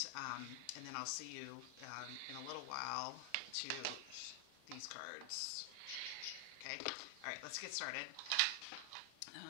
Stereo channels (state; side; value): different; both; correlation 0.00